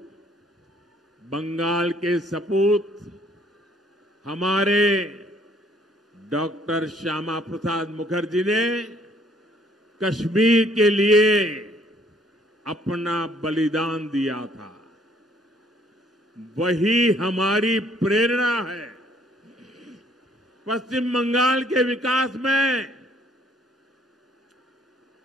बंगाल के सपूत हमारे डॉक्टर श्यामा प्रसाद मुखर्जी ने कश्मीर के लिए अपना बलिदान दिया था, वही हमारी प्रेरणा है। पश्चिम बंगाल के विकास में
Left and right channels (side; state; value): both; normal; correlation 0.63